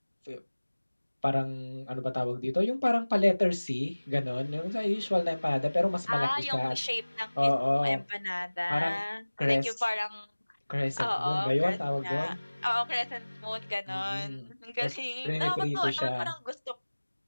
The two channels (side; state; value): both; inverted; correlation -1.00